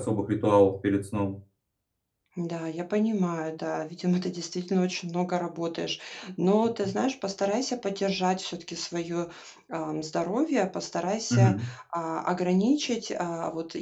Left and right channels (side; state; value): both; identical; correlation 1.00